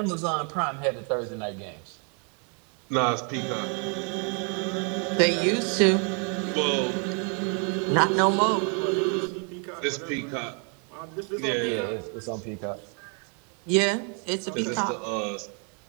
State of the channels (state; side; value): quieter; left; 39.1 dB